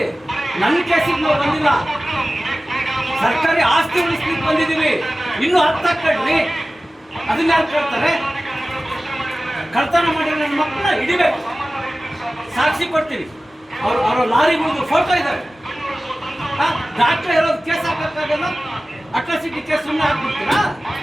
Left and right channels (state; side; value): normal; both; correlation 0.96